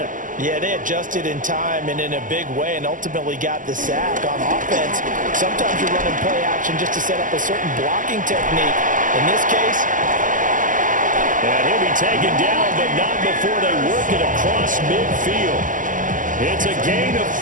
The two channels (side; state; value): left; late; 0.38 ms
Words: Yeah, they adjusted in time and in a big way and ultimately got the sack. On offense, sometimes you're running play action just to set up a certain blocking technique. In this case, and he'll be taken down, but not before they work it across midfield. It's a gain of